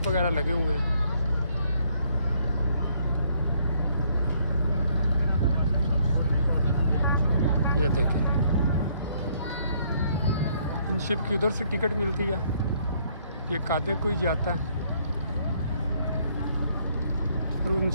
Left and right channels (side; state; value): both; inverted; correlation -0.67